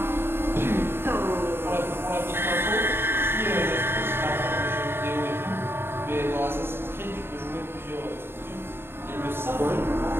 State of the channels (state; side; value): late; left; 0.11 ms